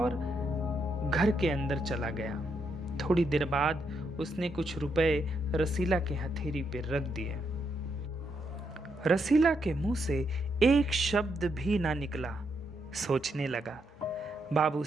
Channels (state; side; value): normal; both; correlation 0.79